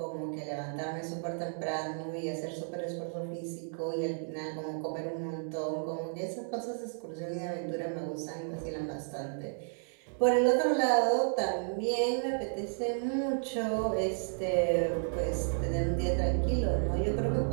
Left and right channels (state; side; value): silent; left; digital silence